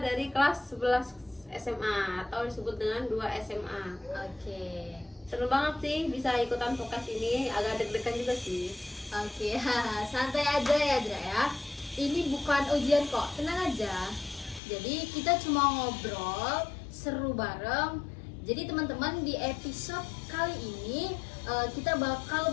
dari kelas 11 SMA atau disebut dengan 2 SMA. Oke. Seru banget sih bisa ikutan podcast ini, agak deg-degan juga sih. Oke, santai aja ya Azra ya. Ini bukan ujian kok, tenang aja. Jadi kita cuma ngobrol, seru bareng. Jadi teman-teman, di episode kali ini kita bakal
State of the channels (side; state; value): right; drops out; at 14.6 s